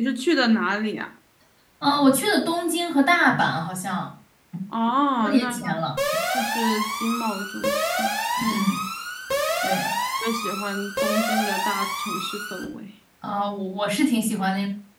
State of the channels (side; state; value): both; identical; correlation 1.00